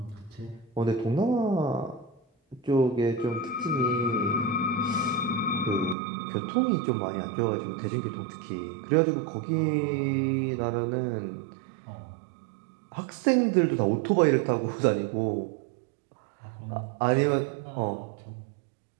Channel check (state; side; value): drops out; left; at 6.0 s